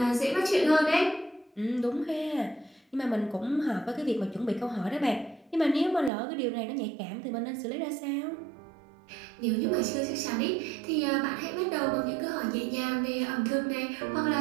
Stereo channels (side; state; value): left; drops out; at 6.1 s